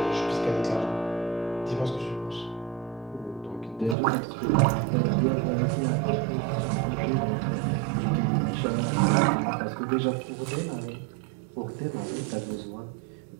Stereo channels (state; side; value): drops out; left; at 4.0 s